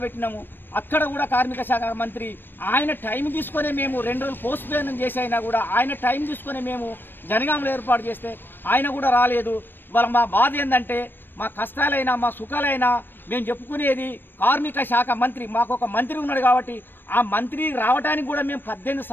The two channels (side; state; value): right; late; 0.095 ms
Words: పెట్టినాము. అక్కడ కూడా కార్మిక శాఖ మంత్రి ఆయన టైం తీసుకొని మేము 2 రోజులు పోస్ట్ పోన్ చేసి అయినా కూడా ఆయన టైం తీసుకొని మేము జనగాంలో ఏర్పాటు చేస్తే ఆయన కూడా రాలేదు. వాళ్ళ మా బాధ ఏంటంటే మా కష్టాలైనా మా సుఖాలైనా మేము చెప్పుకునేది కార్మిక శాఖ మంత్రి. మాకు ఒక మంత్రి ఉన్నాడు కాబట్టి ఆ మంత్రి రావడానికి కూడా మేము